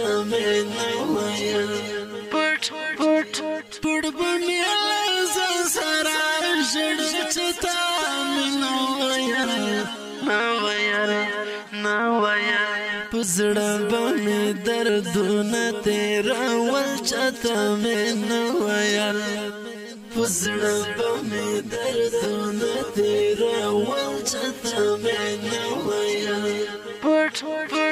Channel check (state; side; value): identical; both; correlation 1.00